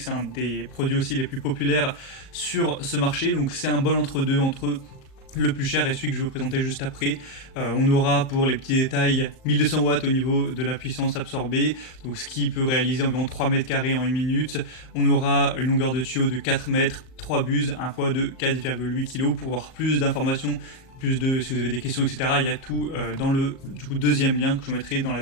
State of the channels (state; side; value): late; right; 38 ms